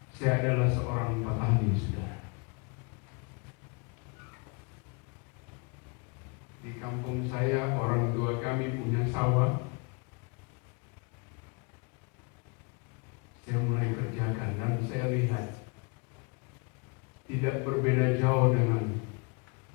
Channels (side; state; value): right; quieter; 32.9 dB